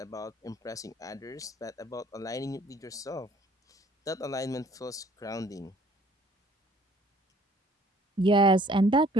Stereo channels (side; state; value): both; normal; correlation 0.56